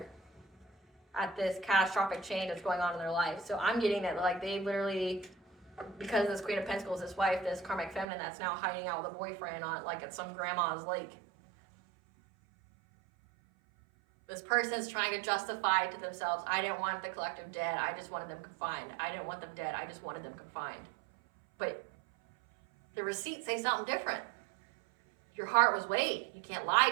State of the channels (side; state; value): left; drops out; at 8.1 s